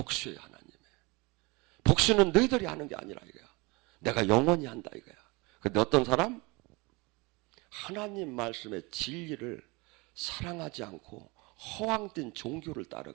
하나님의. 복수는 너희들이 하는 게 아니라 이거야. 내가 영원히 한다 이거야. 근데 어떤 사람? 하나님 말씀의 진리를 사랑하지 않고 허황된 종교를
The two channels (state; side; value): quieter; left; 26.0 dB